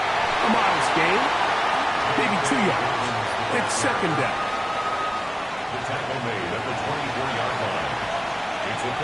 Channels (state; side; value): identical; both; correlation 1.00